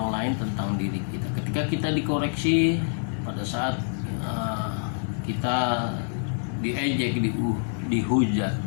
lain tentang diri kita. Ketika kita dikoreksi, pada saat kita diejek, dihujat,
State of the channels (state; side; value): silent; right; 60 dB below the other